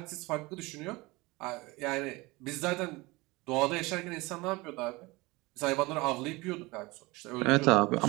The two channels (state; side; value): quieter; left; 22.9 dB